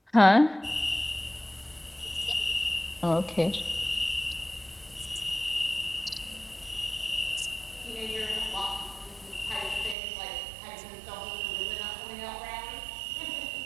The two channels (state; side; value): drops out; left; at 10.0 s